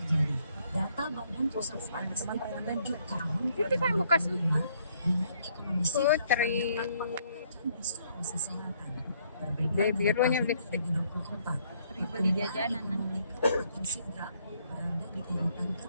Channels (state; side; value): inverted; both; correlation -0.67